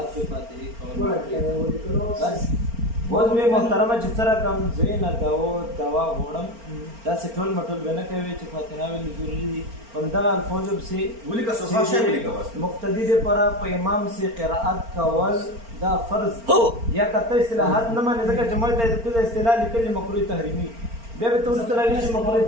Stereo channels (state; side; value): late; left; 4.4 ms